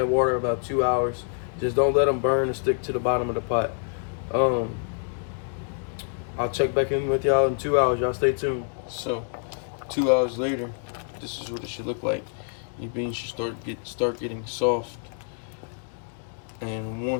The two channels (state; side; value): silent; right; 57 dB below the other